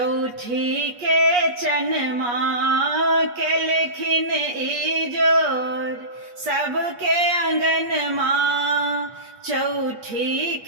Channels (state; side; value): late; left; 8.3 ms